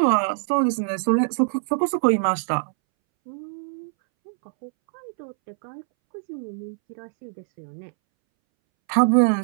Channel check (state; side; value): silent; left; 63 dB below the other